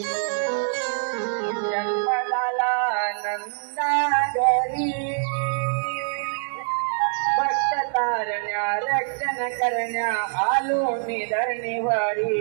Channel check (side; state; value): left; silent; 62 dB below the other